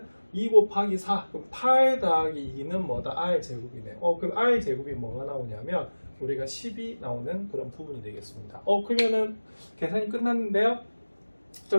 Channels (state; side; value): inverted; both; correlation -1.00